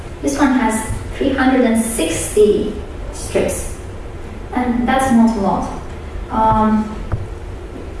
This one has 360 strips, and that's not a lot.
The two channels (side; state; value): both; identical; correlation 1.00